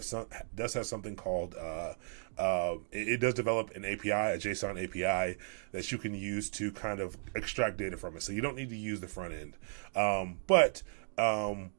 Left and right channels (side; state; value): left; silent; digital silence